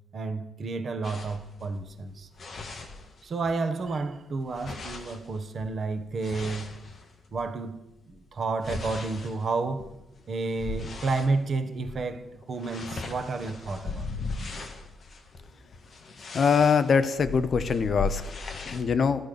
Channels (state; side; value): normal; both; correlation 0.78